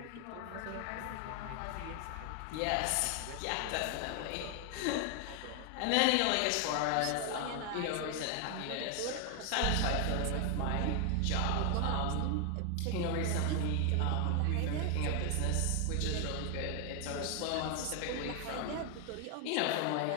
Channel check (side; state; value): both; different; correlation 0.00